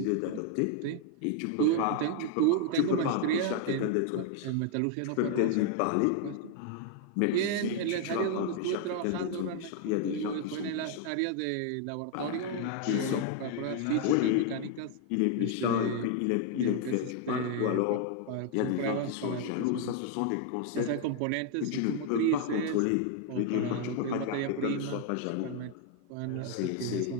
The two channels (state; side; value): different; both; correlation 0.00